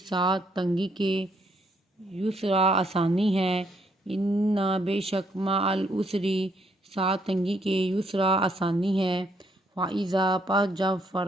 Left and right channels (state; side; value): normal; both; correlation 0.72